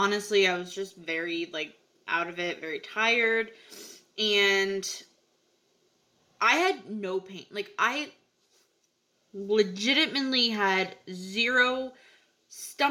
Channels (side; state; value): both; identical; correlation 1.00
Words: I was just very like out of it, very tired. And I had no pain. Like, I legitimately had zero